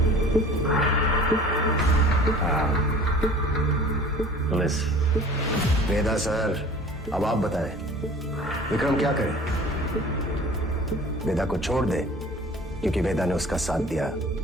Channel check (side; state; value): both; normal; correlation 0.45